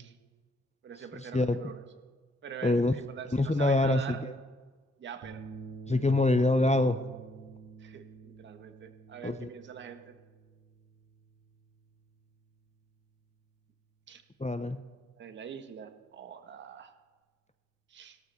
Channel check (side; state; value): both; normal; correlation 0.70